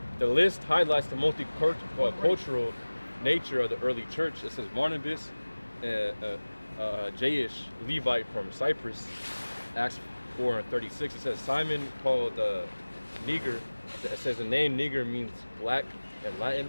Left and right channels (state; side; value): inverted; both; correlation -1.00